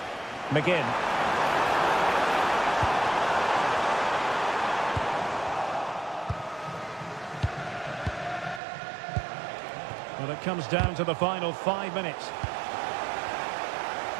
McGinn. Well, it comes down to the final 5 minutes.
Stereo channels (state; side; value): drops out; left; at 8.6 s